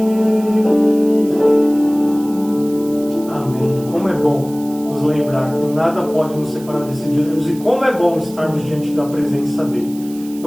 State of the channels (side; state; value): right; noise; hiss, 20 dB below the sound